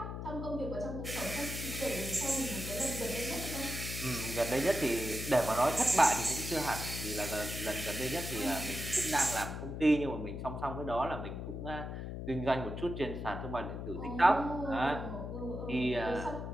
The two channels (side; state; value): left; noise; hum, 6 dB below the sound